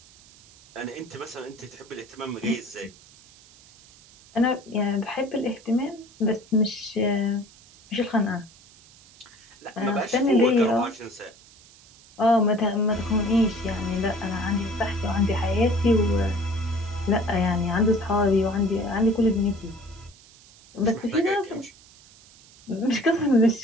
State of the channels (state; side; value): noise; right; hiss, 25 dB below the sound